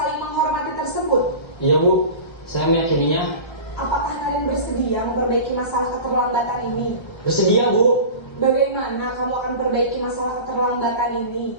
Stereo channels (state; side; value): late; right; 1.3 ms